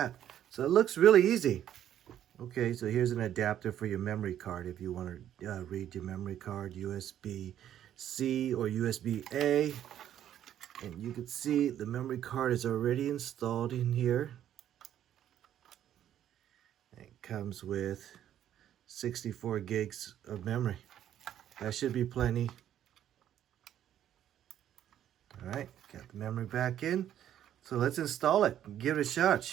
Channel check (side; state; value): left; quieter; 10.9 dB